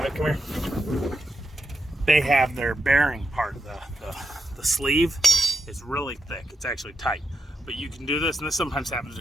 it, come here. They have their bearing part, the sleeve is really thick. It's actually tight. But you can do this, and this sometimes happens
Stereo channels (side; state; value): both; normal; correlation 0.84